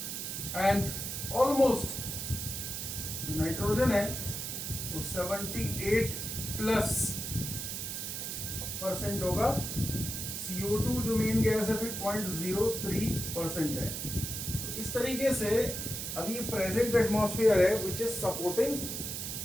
एंड ऑलमोस्ट जो नाइट्रोजन है वो 78+ % होगा। CO2 जो मेन गैस है फिर 0.03% है। तो इस तरीके से अभी प्रेजेंट एटमॉस्फेयर है विच इज सपोर्टिंग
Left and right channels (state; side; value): noise; right; hiss, 4 dB below the sound